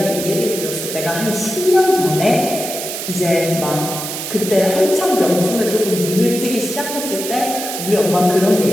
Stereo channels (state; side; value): noise; right; hiss, 6 dB below the sound